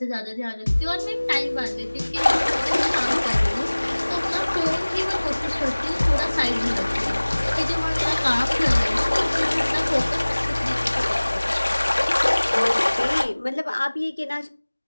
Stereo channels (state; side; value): inverted; both; correlation -1.00